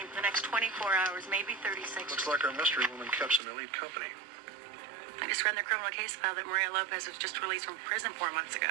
for the next 24 hours, maybe 36. Looks like our mystery woman kept some elite company. I just read in the criminal case file that Maria Lopez was just released from prison 4 months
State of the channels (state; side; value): drops out; left; at 3.4 s